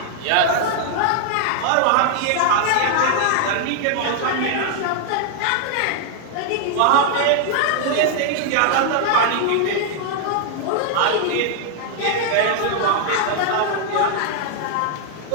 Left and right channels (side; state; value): both; different; correlation 0.00